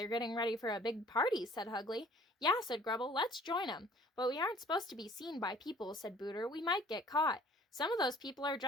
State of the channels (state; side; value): normal; both; correlation 0.54